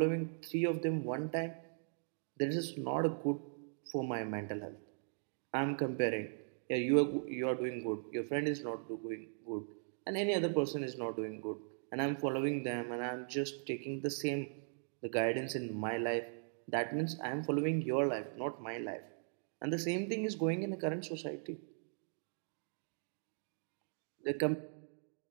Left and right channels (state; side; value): silent; left; digital silence